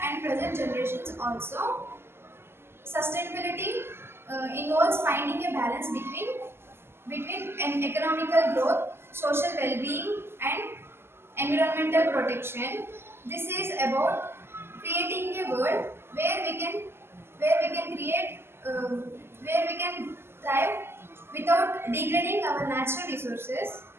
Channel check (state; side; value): late; left; 0.12 ms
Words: and present generations also. Sustainability involves finding a balance between an economical growth, social well-being, and environmental protection. This is about creating a world where we can create where we can thrive without degrading our natural resources.